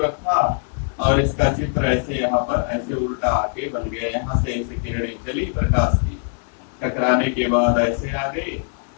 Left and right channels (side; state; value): right; silent; 59 dB below the other